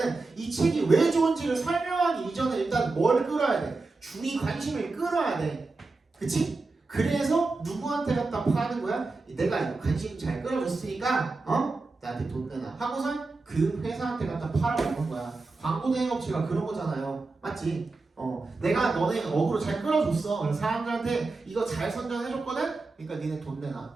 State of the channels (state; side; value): quieter; left; 3.6 dB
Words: 이 책이 왜 좋은지를 설명하기 이전에 일단 뭘 끌어야 돼? 주의 관심을 끌어야 돼. 그치? 그래서 누구한테 갖다 파는 거야? 내가 관심 잘 끌어줬으니까 나한테 돈 내놔 하고선 그 회사한테 갖다 팔아먹는 거야. 광고 대행업체가 그런 거잖아요. 맞지? 내가 너네 어그로 잘 끌어줬어. 그래서 사람들한테 이거 잘 선전해줬거든? 그러니까 니네 돈